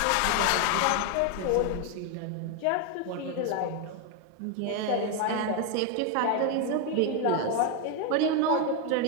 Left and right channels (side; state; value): both; different; correlation 0.01